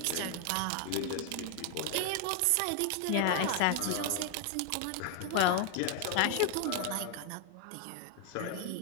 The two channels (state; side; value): different; both; correlation 0.00